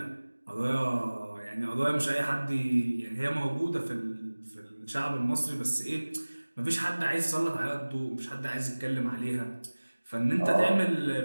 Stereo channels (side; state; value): both; inverted; correlation -1.00